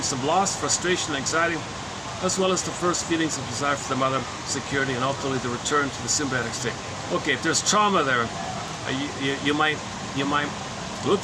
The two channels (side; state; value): both; identical; correlation 1.00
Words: of loss, frustration, anxiety, as well as the first feelings of desire for the mother, security, and ultimately the return to the symbiotic state. Okay, if there's trauma there, you might look